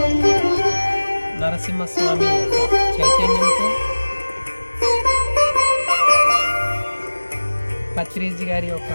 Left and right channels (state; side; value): inverted; both; correlation -1.00